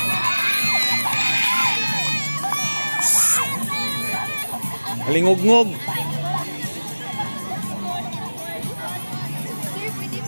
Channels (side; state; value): both; inverted; correlation -1.00